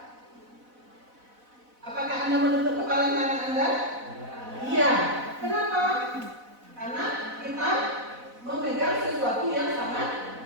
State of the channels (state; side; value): late; left; 4.0 ms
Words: Apakah Anda menutup kepalan tangan Anda? Iya. Kenapa? Karena kita memegang sesuatu yang sangat